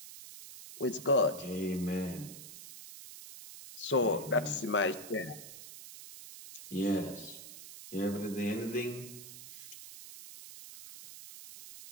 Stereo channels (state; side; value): noise; right; hiss, 13 dB below the sound